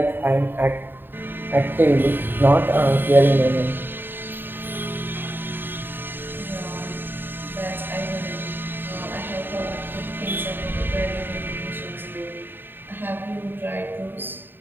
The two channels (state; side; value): late; left; 0.096 ms